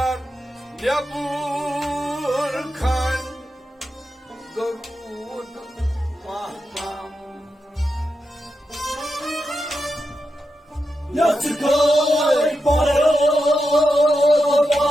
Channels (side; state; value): both; normal; correlation 0.88